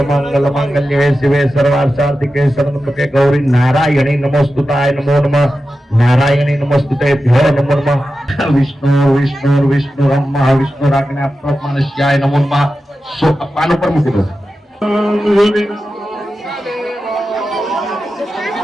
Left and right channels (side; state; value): both; normal; correlation 0.92